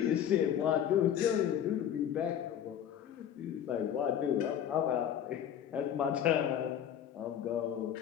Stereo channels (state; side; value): quieter; right; 9.7 dB